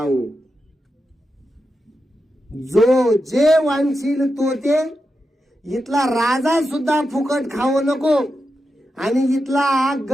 जो जे वांछील तो ते. इथला राजा सुद्धा फुकट खावं नको आणि इथला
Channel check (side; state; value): both; normal; correlation 0.88